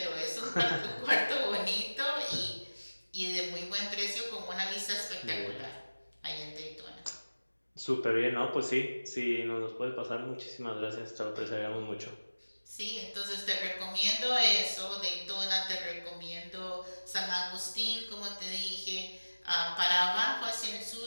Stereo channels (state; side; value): inverted; both; correlation -1.00